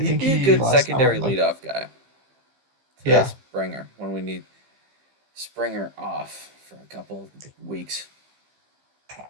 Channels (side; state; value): left; late; 15 ms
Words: think be a he good last secondary time like leadoff guy to yeah. Springer when we need Springer off for a couple weeks.